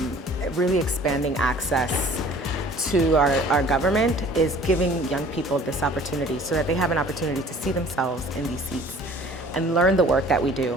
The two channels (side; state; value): both; normal; correlation 0.50